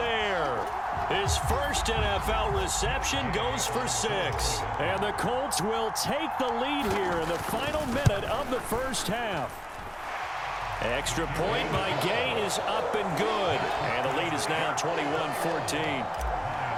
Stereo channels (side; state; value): both; identical; correlation 1.00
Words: His first NFL reception goes for 6. And the Colts will take the lead here in the final minute of the 1st half. Extra point by Gay is up and good. And the lead is now 21-14.